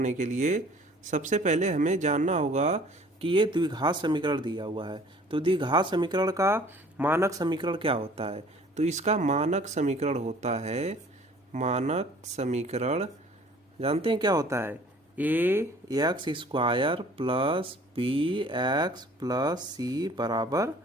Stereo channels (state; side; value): normal; both; correlation 0.52